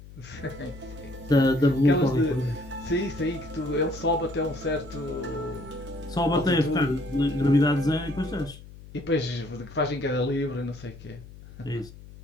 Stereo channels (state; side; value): noise; left; hum, 18 dB below the sound